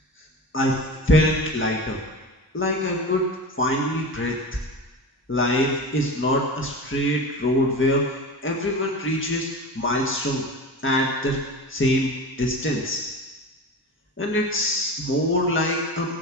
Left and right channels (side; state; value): both; normal; correlation 0.30